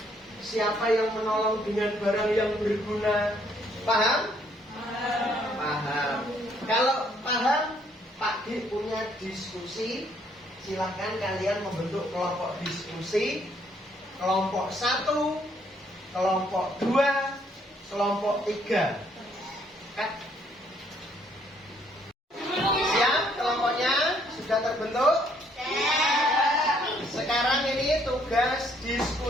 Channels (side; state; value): both; normal; correlation 0.67